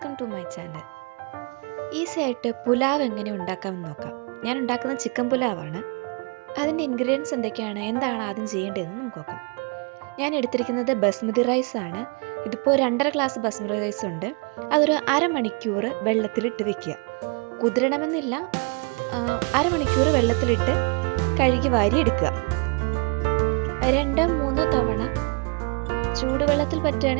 to my channel. Easy ആയിട്ട് പുലാവ് എങ്ങനെ ഉണ്ടാക്കാമെന്ന് നോക്കാം. ഞാൻ ഉണ്ടാക്കുന്നത് ചിക്കൻ പുലാവാണ്. അതിൻ്റെ ഇൻഗ്രീഡിയൻസ് എന്തൊക്കെയാണ്, എന്താണ് ആദ്യം ചെയ്യേണ്ടതെന്ന് നമുക്ക് നോക്കാം. ഞാൻ എടുത്തിരിക്കുന്നത് ബസ്മതി റൈസ് ആണ്. ഇതിപ്പോൾ 2.5 ഗ്ലാസ് ബസ്മതി റൈസ് ഉണ്ട്. അതൊരു അരമണിക്കൂർ വെള്ളത്തിലിട്ട് വെക്കുക. കുതിരണമെന്നില്ല, അരമണിക്കൂർ വെള്ളത്തിലിട്ട് കഴുകി വാരി എടുക്കുക. 2-3 തവണ ചൂടുവെള്ളത്തിൽ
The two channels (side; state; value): left; quieter; 33.6 dB